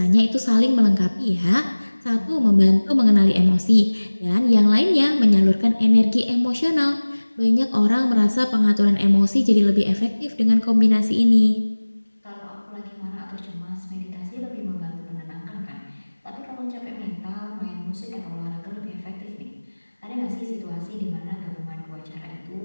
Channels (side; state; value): both; inverted; correlation -1.00